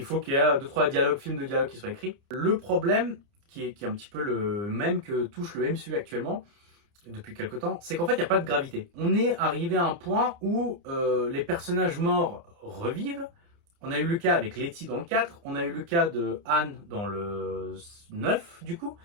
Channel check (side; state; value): left; late; 29 ms